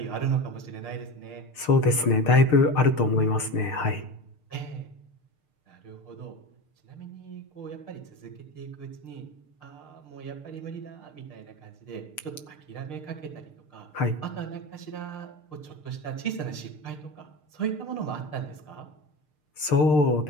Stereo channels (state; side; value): late; right; 6.6 ms